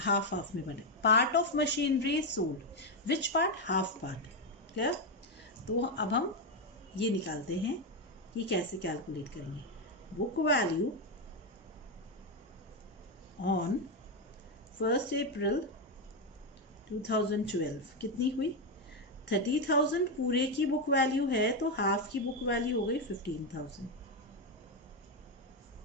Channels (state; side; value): normal; both; correlation 0.06